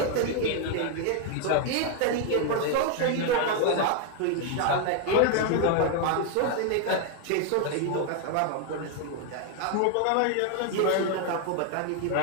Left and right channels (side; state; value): both; different; correlation 0.01